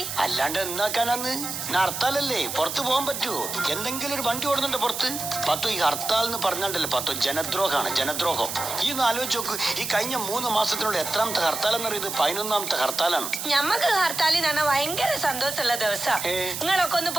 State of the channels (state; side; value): noise; right; hiss, 5 dB below the sound